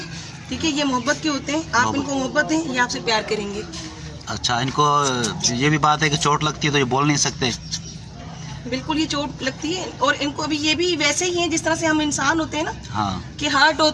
ठीक है, ये मोहब्बत के होते हैं। आप इनको मोहब्बत दें, ये आपसे प्यार करेंगे। अच्छा, इनको ये भी बात है कि चोट लगती है तो ये बोल नहीं सकते? बिल्कुल, ये चोट लगती है और इनको अभी ये भी वैसे ही हैं जिस तरह से हम इंसान होते हैं ना। हाँ। कि हार्ट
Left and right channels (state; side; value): identical; both; correlation 1.00